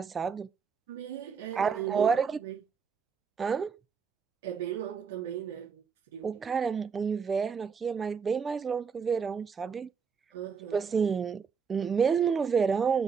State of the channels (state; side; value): quieter; left; 6.1 dB